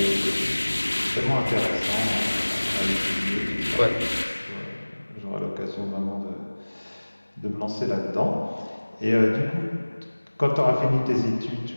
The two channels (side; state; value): both; inverted; correlation -1.00